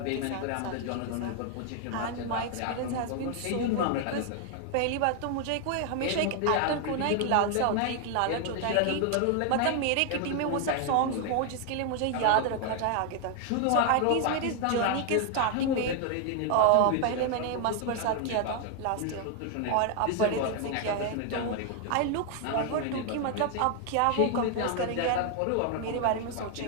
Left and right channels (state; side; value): different; both; correlation 0.00